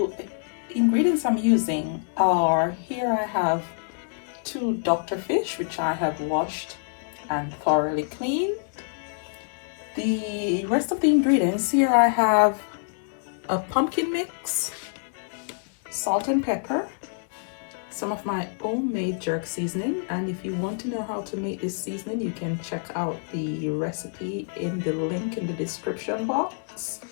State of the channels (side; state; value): right; silent; digital silence